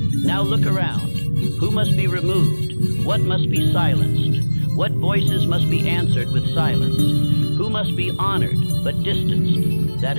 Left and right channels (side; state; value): both; inverted; correlation -1.00